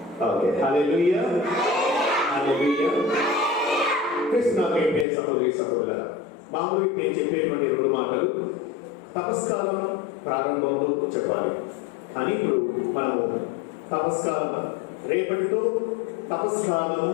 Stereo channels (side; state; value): right; drops out; at 5.1 s